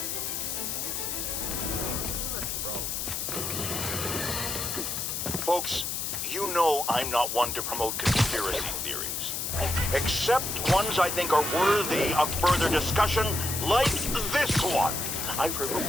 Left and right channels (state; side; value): noise; left; hiss, 2 dB below the sound